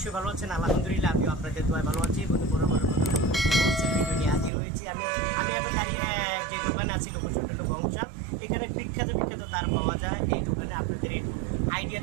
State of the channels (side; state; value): left; drops out; at 4.5 s